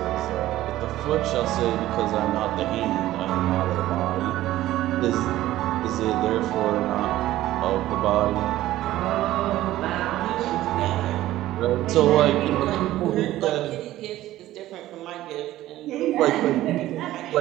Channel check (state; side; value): quieter; left; 15.0 dB